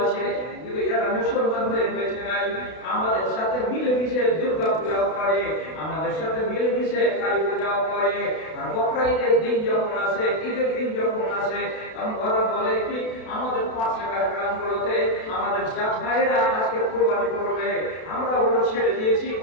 আছে, কিন্তু এরা মুসলমান হয়ে বেঁচে নাই। আমাদের সাথে মিলেমিশে দুর্গা পূজাও করে, আমাদের সাথে মিলেমিশে কালী পূজাও করে। আর বকরা ঈদের দিন যখন আসে, ঈদের দিন যখন আসে, তখন ওরা বলে কি আমাদের পাশের গ্রামগুলোতে আমাদের জাত ভাইরা আজকে কুরবানি করবে, আমরা ওগুলো ছেড়ে দিয়েছি,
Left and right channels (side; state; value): right; late; 32 ms